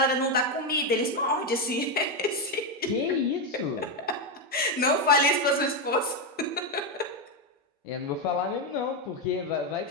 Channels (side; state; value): both; normal; correlation 0.07